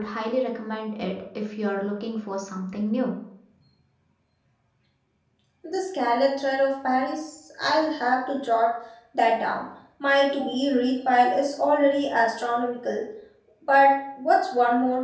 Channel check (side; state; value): both; identical; correlation 1.00